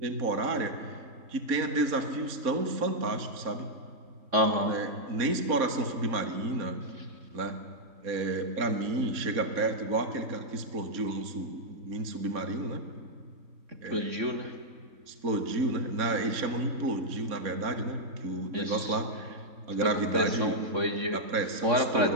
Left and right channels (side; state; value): left; late; 4.2 ms